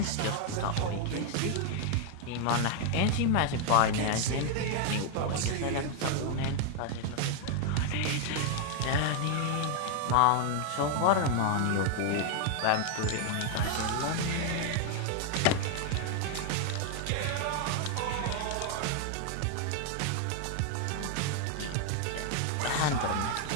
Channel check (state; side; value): different; both; correlation 0.00